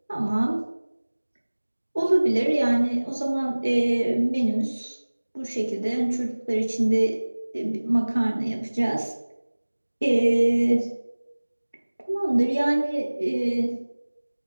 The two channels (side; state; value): both; inverted; correlation -1.00